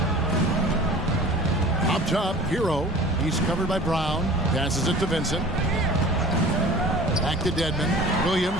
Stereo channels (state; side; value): normal; both; correlation 0.43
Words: Up top, Hero. He's covered by Brown. Passes it to Vincent. Back to Dedmon.